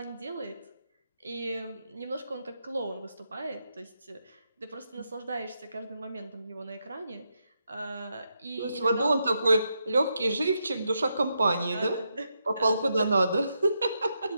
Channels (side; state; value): both; inverted; correlation -0.82